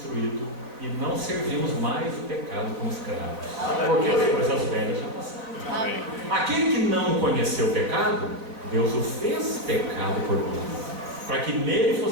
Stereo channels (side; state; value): left; late; 3.9 ms